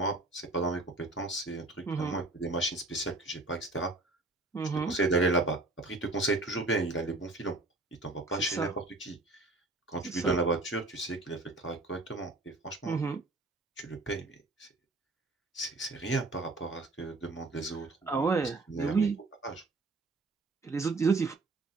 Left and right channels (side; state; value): left; quieter; 3.1 dB